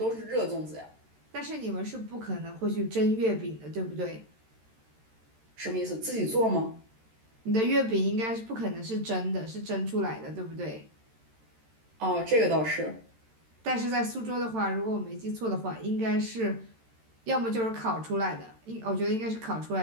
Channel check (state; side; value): late; left; 13 ms